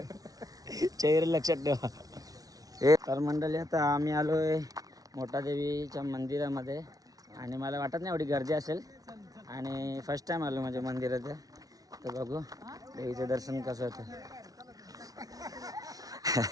चेहरे लक्षात ठेवा. हे तर मंडळी आता आम्ही आलोय मोठा देवीच्या मंदिरामध्ये. आणि मला वाटत नाही एवढी गर्दी असेल. आणि फर्स्ट टाइम आलो म्हणजे मंदिरात. तर बघू देवीचं दर्शन कसं होतं.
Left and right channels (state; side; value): late; left; 0.18 ms